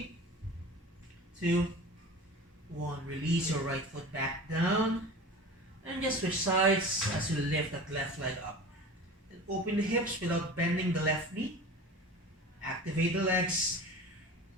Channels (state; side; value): normal; both; correlation 0.36